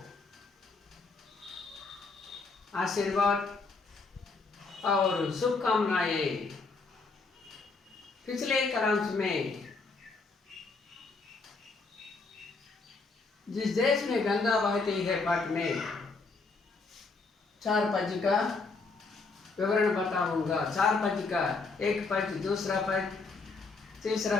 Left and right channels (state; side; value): quieter; right; 4.1 dB